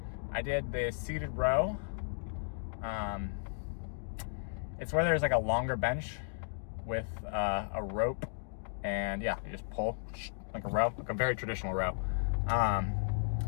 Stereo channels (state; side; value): silent; right; digital silence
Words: I did the seated row. It's where there's like a longer bench with a rope, and yeah, you just pull like a row, like a very traditional row.